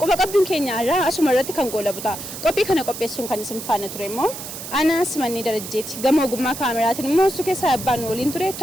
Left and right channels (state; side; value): noise; right; hiss, 10 dB below the sound